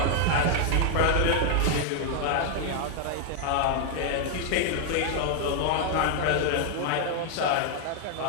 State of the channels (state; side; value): different; both; correlation 0.00